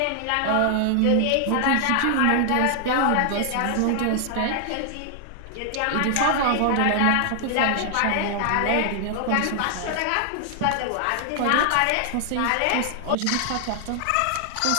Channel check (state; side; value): different; both; correlation 0.00